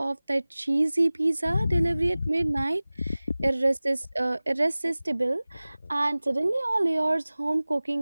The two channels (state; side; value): inverted; both; correlation -0.98